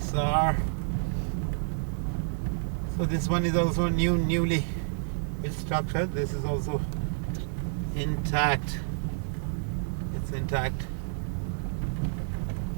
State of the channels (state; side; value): silent; left; 58 dB below the other